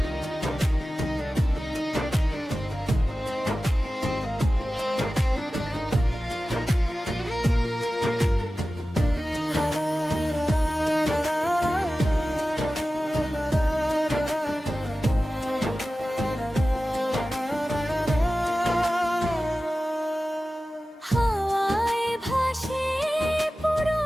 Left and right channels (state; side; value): normal; both; correlation 0.95